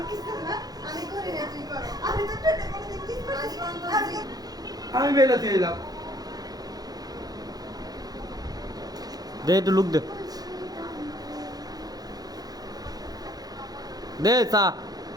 কিছু না আমি করি না তুই করো আমি তো ঠোঁটে কোনোদিন কিস করছি আমি বেলাতে এলাম। দে একটু লুক দে দে চা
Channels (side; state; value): left; late; 0.19 ms